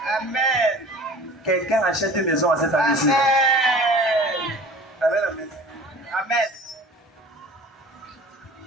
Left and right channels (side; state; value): both; normal; correlation 0.43